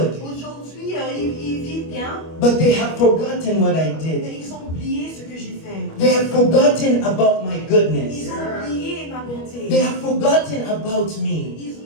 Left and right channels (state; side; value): late; right; 25 ms